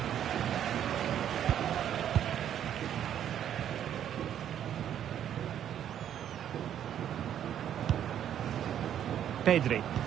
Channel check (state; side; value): quieter; left; 10.1 dB